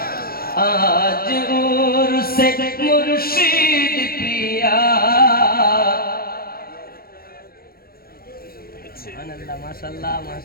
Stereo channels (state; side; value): late; right; 0.44 ms